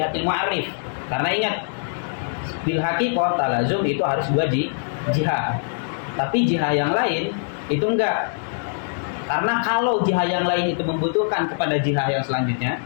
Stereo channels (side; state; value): right; silent; digital silence